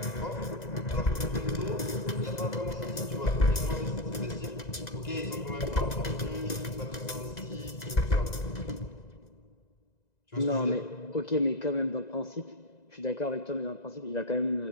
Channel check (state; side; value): late; right; 2.0 ms